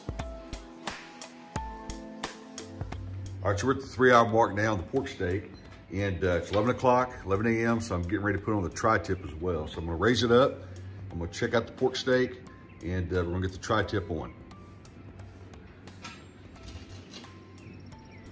All right, so we're at the 3-hour mark now on the pork steak, and it's 11 o'clock, 11 a.m., so I'm getting ready to put on the tri-tip as well. So I'm gonna raise it up, I'm gonna check out the pork steak, and we're gonna get the tri-tip on.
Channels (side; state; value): both; identical; correlation 1.00